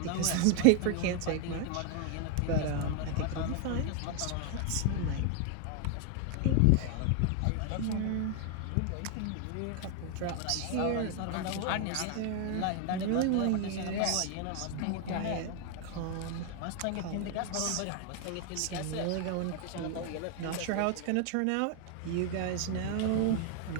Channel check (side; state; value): both; different; correlation 0.00